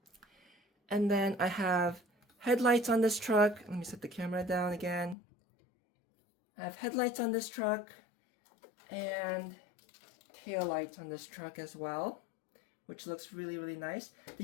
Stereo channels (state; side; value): drops out; right; at 5.2 s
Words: And then I have headlights on this truck. Let me set the camera down again. I have headlights on this truck and tail lights on this truck as well, which looks really, really nice.